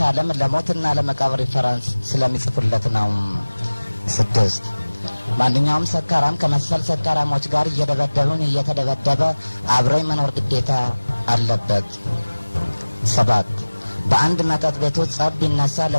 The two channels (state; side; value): inverted; both; correlation -1.00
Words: ለሞትና ለመቃብር ሪፈረንስ ስለሚጽፉለት ነው። 6 ማንኛውም ሰካራም ከመሰል ሰካራሞች ጋር እየደበደቡን እየተደበደበ አብሮ መኖር ግዴታ አለበት። 7 በአንድ መጠጥ ቤት ውስጥ ጸብ ቢነሳ